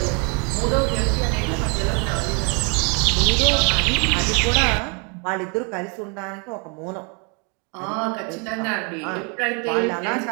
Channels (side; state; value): left; quieter; 34.9 dB